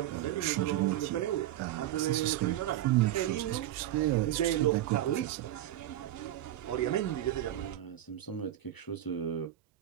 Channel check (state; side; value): quieter; left; 13.1 dB